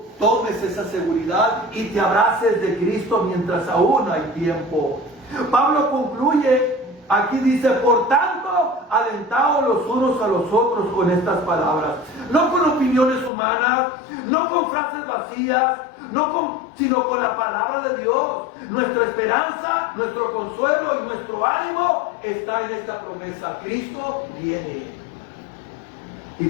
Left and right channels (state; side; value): drops out; right; at 13.3 s